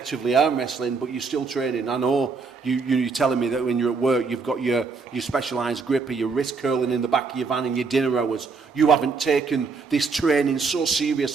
arm wrestling, but you're still training. I know you're telling me that when you're at work, you've got your specialised gripper, your wrist curling in the back of your van in your dinner hours. You haven't taken this training so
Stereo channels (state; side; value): quieter; left; 4.7 dB